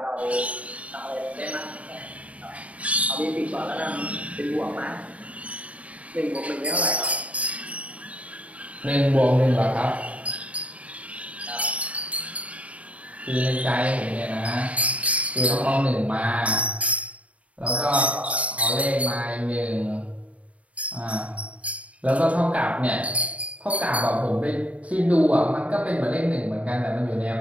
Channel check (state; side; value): late; left; 0.066 ms